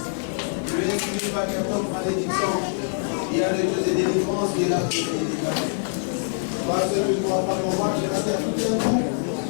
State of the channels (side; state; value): right; silent; 56 dB below the other